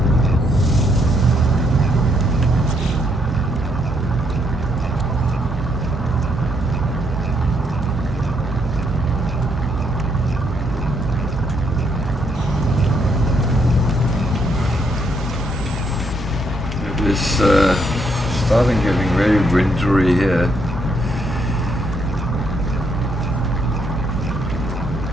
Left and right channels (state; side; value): normal; both; correlation 0.74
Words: It's starting getting very wintry here.